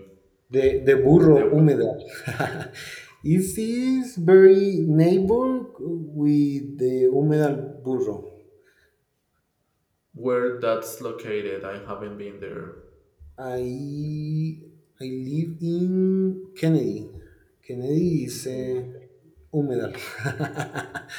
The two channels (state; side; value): identical; both; correlation 1.00